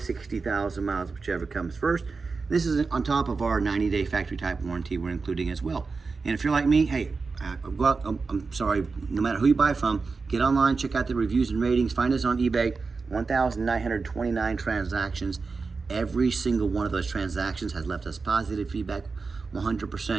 miles, whichever comes first. This is on top of our 90-day factory type warranty we're including as well. And if you're like me, hey, I'm sorry, no matter who you buy from, get online, check out the reviews and ratings, find us on eBay, 1,929 transactions. Every single one of those transactions has left us positive feedback,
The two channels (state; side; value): quieter; left; 4.4 dB